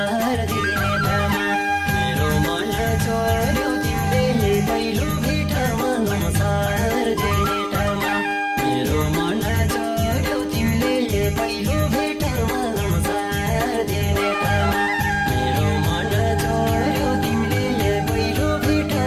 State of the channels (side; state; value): both; identical; correlation 1.00